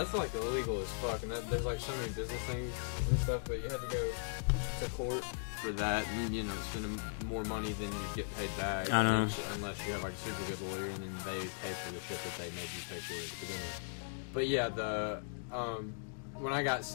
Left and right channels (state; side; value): silent; right; digital silence